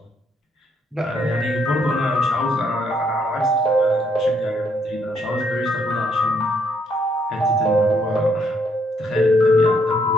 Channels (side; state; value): both; normal; correlation 0.71